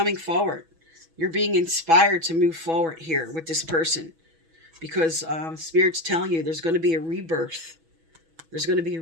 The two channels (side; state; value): left; late; 6.2 ms